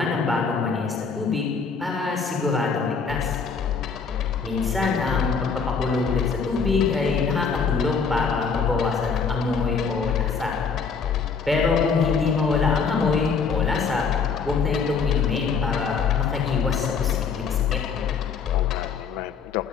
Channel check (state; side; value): quieter; right; 5.5 dB